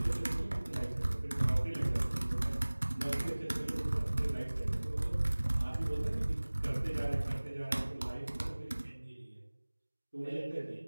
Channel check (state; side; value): inverted; both; correlation -1.00